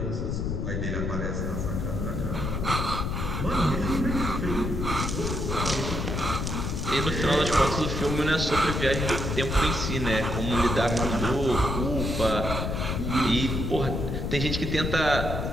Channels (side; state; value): left; noise; rumble, 2 dB below the sound